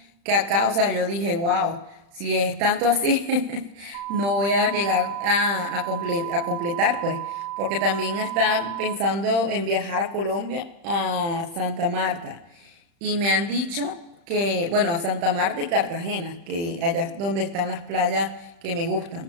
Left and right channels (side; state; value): left; late; 36 ms